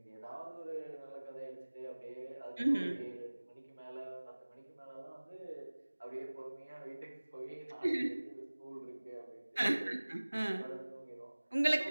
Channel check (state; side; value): inverted; both; correlation -1.00